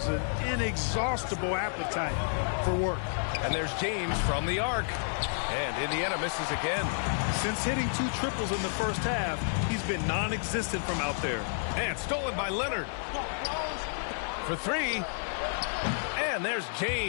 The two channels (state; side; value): silent; right; 58 dB below the other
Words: an inexhaustible appetite for work. And there's James from the arc. And Indiana misses again. Since hitting 2 triples in the first half, he's been non-existent from out there. And stolen by Leonard. For 3. And there's